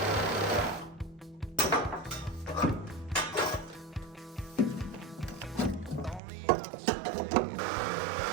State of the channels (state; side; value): drops out; left; at 6.2 s